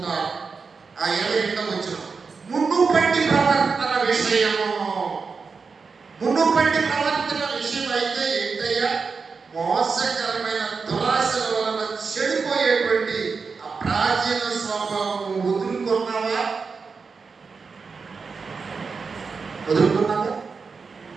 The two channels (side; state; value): left; quieter; 5.0 dB